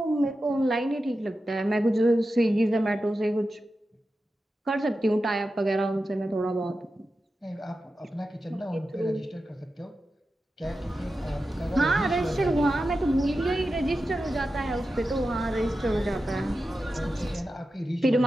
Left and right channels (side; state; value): both; normal; correlation 0.91